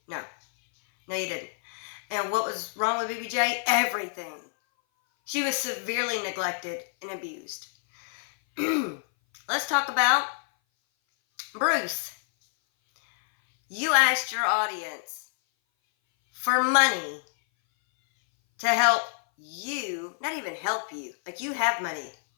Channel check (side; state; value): right; silent; 58 dB below the other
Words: No. No, you didn't. And what was wrong with BBJ? Everything. She was severely neglected and abused. Let's talk about Bruce. You asked your audience for money to help you, not even help you, like you have money.